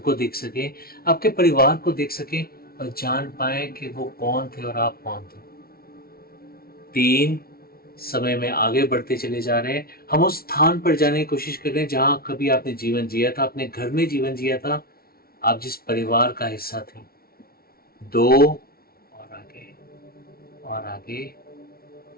देख सके, आपके परिवार को देख सके और जान पाए कि वो कौन थे और आप कौन थे। 3, समय में आगे बढ़ते चले जा रहे हैं। हम उस स्थान पर जाने की कोशिश कर रहे हैं जहां कभी आपने जीवन जिया था, अपने घर में जीवन जिया था, आप जिस परिवार का हिस्सा थे। 2 और आगे और आगे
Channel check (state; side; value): late; right; 0.44 ms